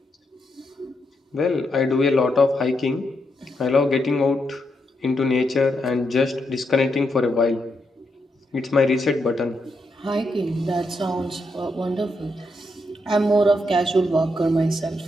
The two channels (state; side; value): normal; both; correlation 0.81